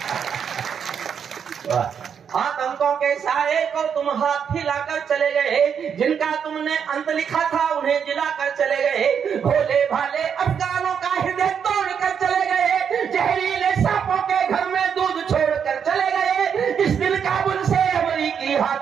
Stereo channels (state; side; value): quieter; left; 7.4 dB